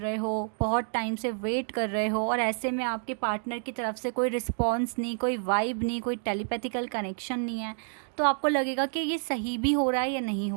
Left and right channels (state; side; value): silent; left; 59 dB below the other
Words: हो, बहुत टाइम से वेट कर रहे हो, और ऐसे में आपके पार्टनर की तरफ से कोई रिस्पॉन्स नहीं, कोई वाइब नहीं, कोई टेलीपैथिकल कनेक्शन नहीं है, तो आपको लगेगा कि ये सही भी हो रहा है या नहीं